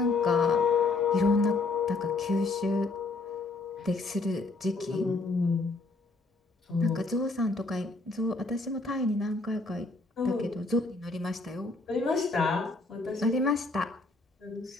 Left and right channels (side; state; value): right; quieter; 3.4 dB